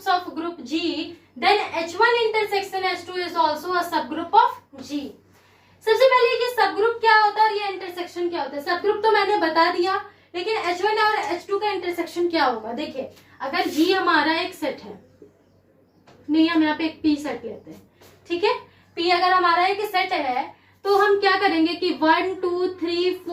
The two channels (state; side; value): identical; both; correlation 1.00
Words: of group G, then H1 intersection H2 is also a subgroup of G। सबसे पहले कि सबग्रुप क्या होता है और ये इंटरसेक्शन क्या होता है। सबग्रुप तो मैंने बता दिया, लेकिन H1 और H2 का इंटरसेक्शन क्या होगा। देखिए, अगर G हमारा एक सेट है, नहीं हम यहाँ पे एक P सेट लेते हैं, ठीक है। P अगर हमारा एक सेट है तो हम क्या करेंगे कि 1 2 3